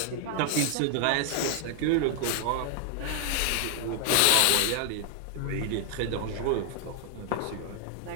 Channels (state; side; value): different; both; correlation 0.00